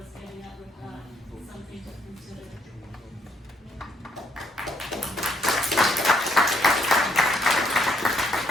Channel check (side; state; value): both; normal; correlation 0.71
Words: getting at with that, something to consider.